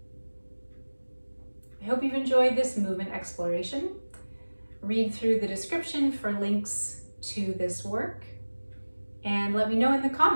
I hope you've enjoyed this movement exploration. Read through the description for links to this work, and let me know in the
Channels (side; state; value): both; inverted; correlation -1.00